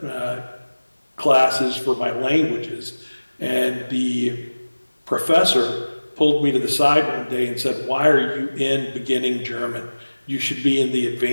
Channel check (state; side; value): inverted; both; correlation -1.00